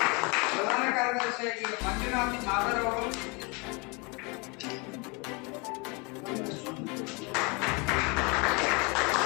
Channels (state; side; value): quieter; right; 29.8 dB